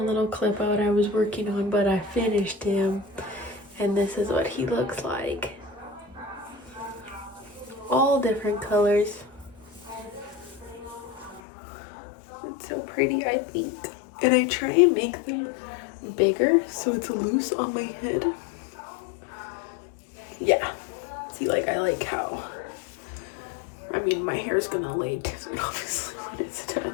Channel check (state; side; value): drops out; right; at 11.4 s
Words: clip out I was working on, but I finished him. And this is what he looks like. All different colors. It's so pretty, I think. And I try and make them bigger so it's loose on my head. Yeah. See, like, I like how, I mean, my hair's gonna lay down obviously when it's done.